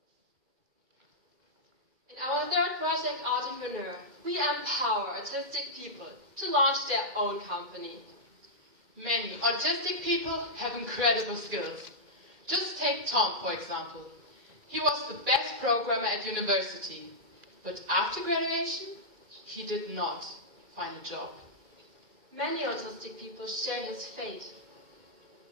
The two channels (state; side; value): late; left; 2.3 ms